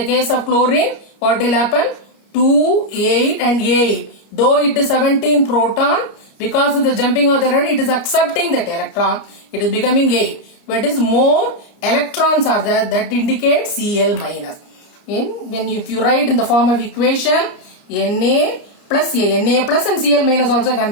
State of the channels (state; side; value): late; right; 29 ms